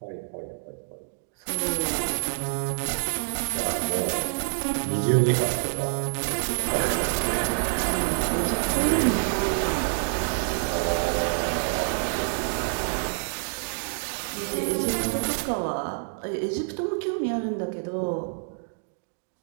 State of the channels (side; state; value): left; silent; digital silence